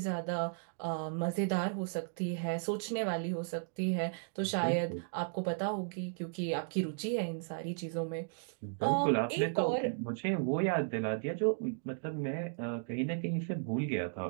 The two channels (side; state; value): left; silent; digital silence